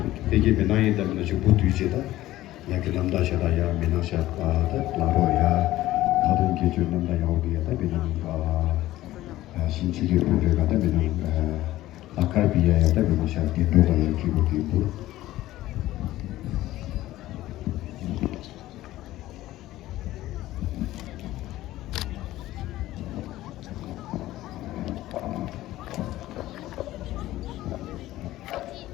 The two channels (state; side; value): quieter; right; 15.6 dB